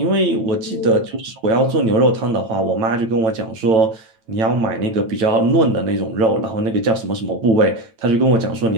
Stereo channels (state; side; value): late; left; 8.9 ms